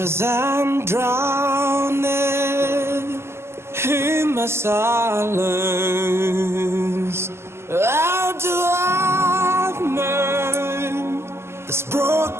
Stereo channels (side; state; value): left; late; 0.12 ms